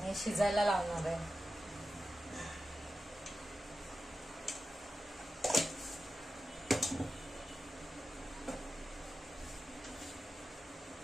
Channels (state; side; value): normal; both; correlation 0.92